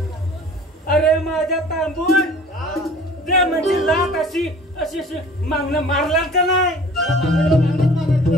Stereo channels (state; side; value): normal; both; correlation 0.47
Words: अरे माझ्या तांबून ते म्हणजे लात अशी अशी अशी मागणं मारला का नाही